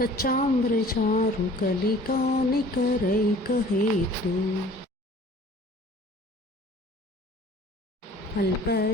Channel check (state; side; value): normal; both; correlation 0.49